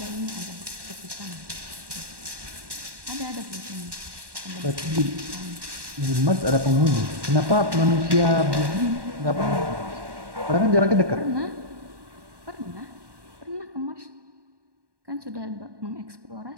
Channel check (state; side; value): late; left; 1.1 ms